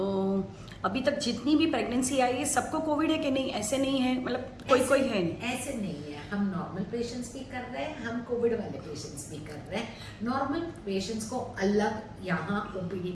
अभी तक जितनी भी प्रेगनेंसी आई है सबको कोविड है कि नहीं, ऐसे नहीं है, मतलब कोई कोई है नहीं? ऐसे नहीं है, हम नॉर्मल पेशेंट्स भी कर रहे हैं, हम कोविड वाले पेशेंट्स भी कर रहे हैं। नॉर्मल पेशेंट्स को अलग यहाँ ओपीडी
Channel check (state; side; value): identical; both; correlation 1.00